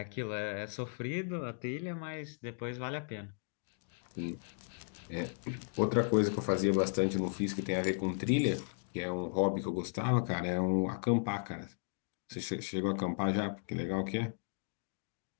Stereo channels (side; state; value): right; silent; digital silence